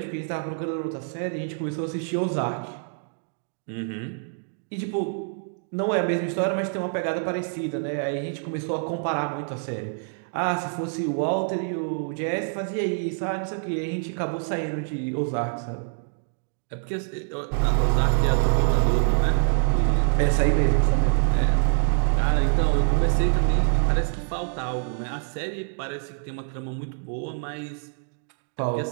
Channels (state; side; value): silent; left; digital silence